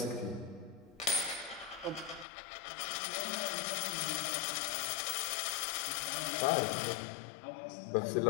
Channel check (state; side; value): drops out; right; at 2.2 s